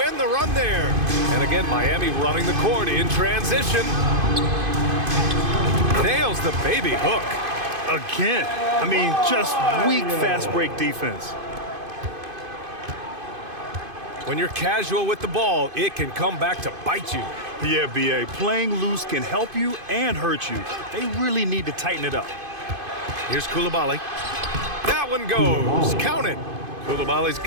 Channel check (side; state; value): left; late; 2.5 ms